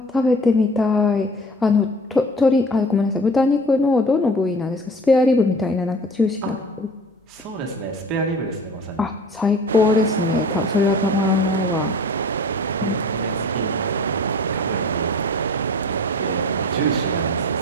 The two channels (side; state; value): both; normal; correlation 0.42